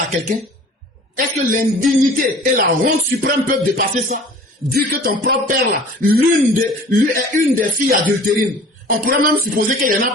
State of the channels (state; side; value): normal; both; correlation 0.46